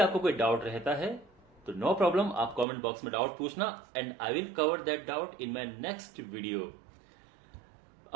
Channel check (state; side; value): drops out; left; at 2.7 s